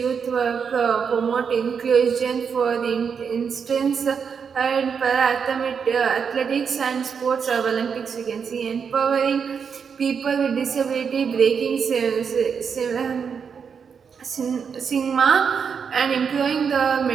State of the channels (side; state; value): left; quieter; 6.5 dB